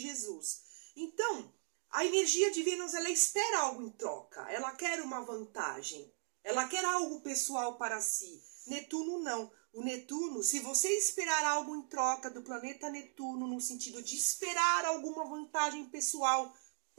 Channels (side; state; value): left; silent; digital silence